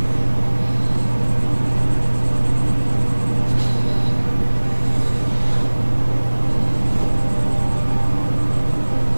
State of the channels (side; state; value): both; inverted; correlation -1.00